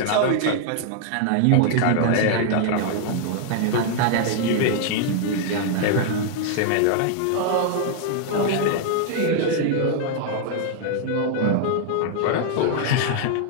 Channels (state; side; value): different; both; correlation 0.00